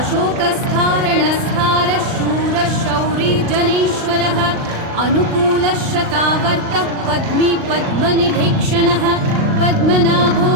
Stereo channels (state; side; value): late; left; 38 ms